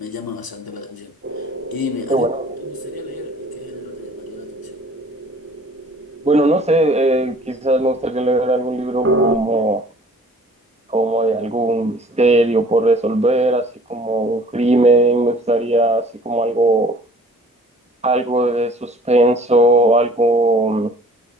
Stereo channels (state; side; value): normal; both; correlation 0.52